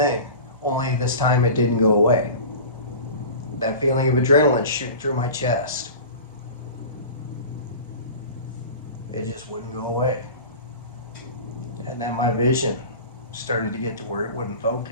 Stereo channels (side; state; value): both; inverted; correlation -0.35